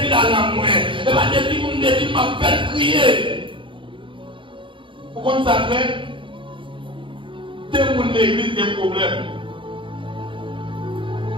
la langue. Il va dire que vous me défilez ma belle crier. Pourquoi ça fait? C'est pour l'église des problèmes.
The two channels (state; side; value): late; left; 0.24 ms